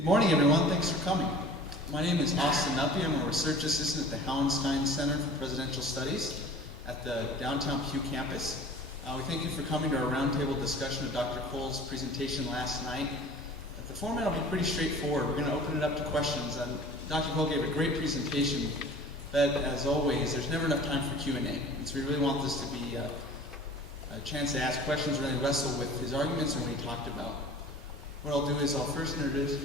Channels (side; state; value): both; normal; correlation 0.44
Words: morning, everyone. Thanks for coming. My name is Austin Nuppy. I'm a research assistant at the Hallenstein Center for Presidential Studies at the downtown Pew campus. We thank you for coming to our roundtable discussion of Dr. Cole's presentation last night. The format will be pretty straightforward. We're going to open it up to questions. Dr. Cole gave a great presentation, but as always, there's never enough time for Q&A. And so we really want this to be a chance to ask questions, really wrestle with his arguments and what he talked about. What I'll do is I'll first